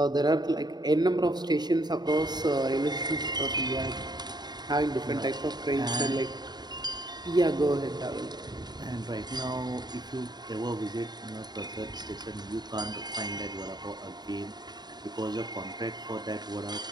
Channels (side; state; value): left; late; 0.20 ms